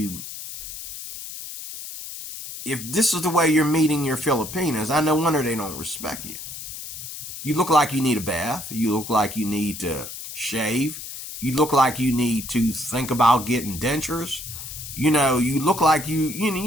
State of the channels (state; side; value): noise; left; hiss, 10 dB below the sound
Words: If this is the way you're meeting your Filipinas, I no wonder they don't respect you. You look like you need a bath. You look like you need to shave. You look like you need to think about getting dentures. You look like you